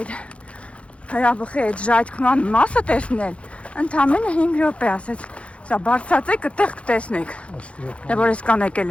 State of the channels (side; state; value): right; late; 0.061 ms